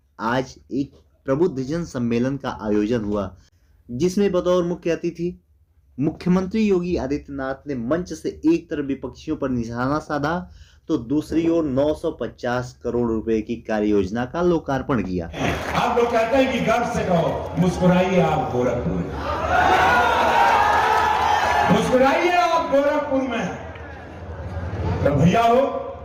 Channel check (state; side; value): identical; both; correlation 1.00